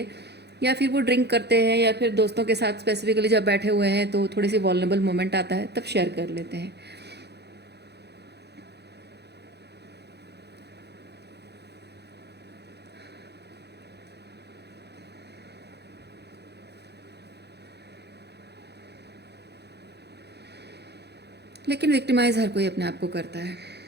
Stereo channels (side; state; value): left; late; 0.48 ms